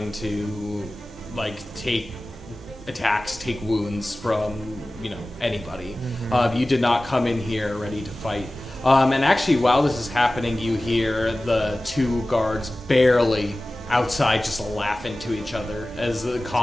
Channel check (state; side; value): normal; both; correlation 0.97